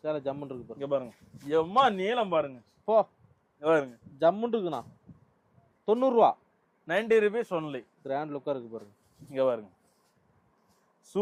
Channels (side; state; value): both; identical; correlation 1.00